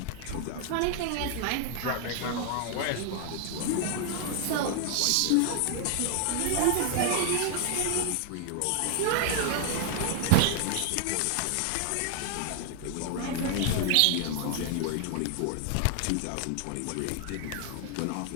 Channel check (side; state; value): both; different; correlation 0.00